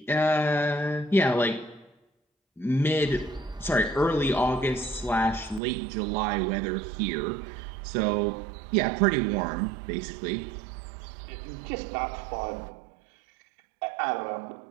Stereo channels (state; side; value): drops out; left; at 5.6 s